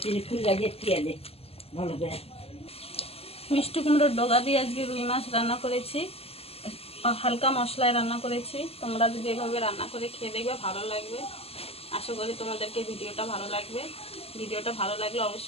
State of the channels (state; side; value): late; right; 0.29 ms